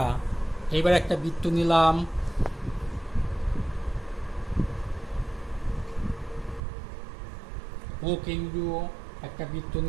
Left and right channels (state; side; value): drops out; left; at 6.6 s